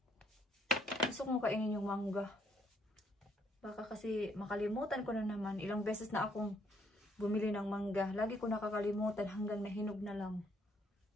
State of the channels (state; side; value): normal; both; correlation 0.70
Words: Gusto kong kainin yung mangga. Baka kasi makalimutan ko na naman. Ilang beses na akong bumili ng mangga. Lagi ko nakakalimutan hanggang nahinog na lang.